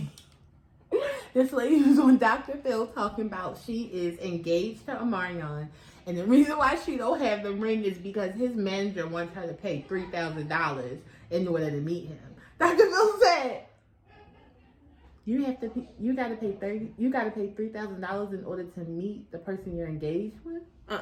was on Dr. Phil talking about she is engaged to Omarion, and the reason why she don't have the ring is because his manager wants her to pay $3,000 in order to meet him. Dr. Phil said, you gotta pay $3,000 in order to meet the person you're engaged with.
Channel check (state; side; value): identical; both; correlation 1.00